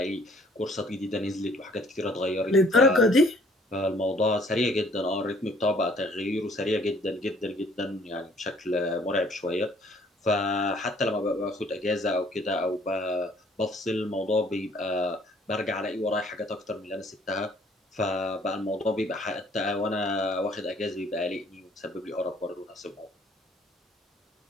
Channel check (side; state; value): both; normal; correlation 0.59